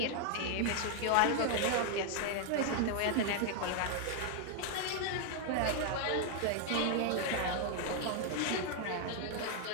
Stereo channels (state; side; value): different; both; correlation 0.00